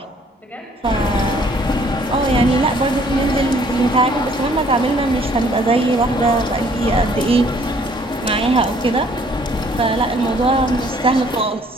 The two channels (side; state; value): both; normal; correlation 0.60